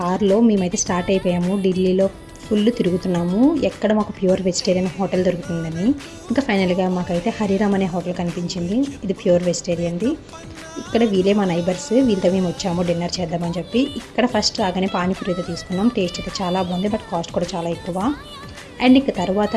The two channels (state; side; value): identical; both; correlation 1.00